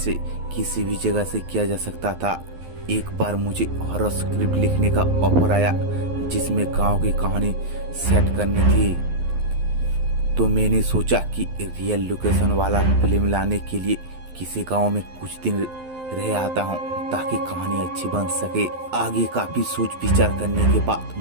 किसी भी जगह से किया जा सकता था। एक बार मुझे हॉरर स्क्रिप्ट लिखने का ऑफर आया जिसमें गांव की कहानी सेट करनी थी। तो मैंने सोचा कि रियल लोकेशन वाला फिल्म लाने के लिए किसी गांव में कुछ दिन रह आता हूँ ताकि कहानी अच्छी बन सके। आगे काफी सोच विचार करने के बाद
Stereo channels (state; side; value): late; left; 11 ms